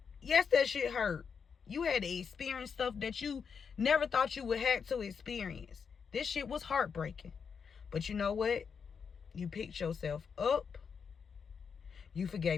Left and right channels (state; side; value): quieter; right; 6.3 dB